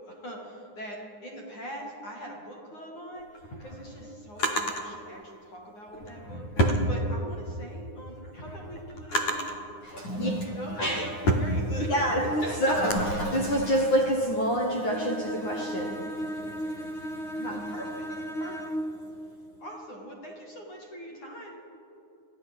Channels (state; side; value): late; right; 9.7 ms